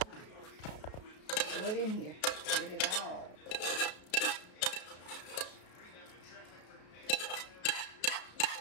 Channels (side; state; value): right; late; 33 ms